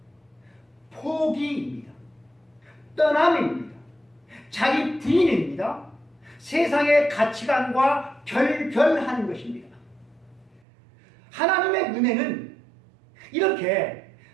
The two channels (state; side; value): drops out; left; at 10.6 s